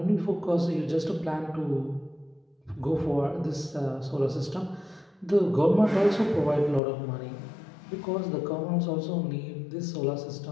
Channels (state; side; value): drops out; right; at 6.8 s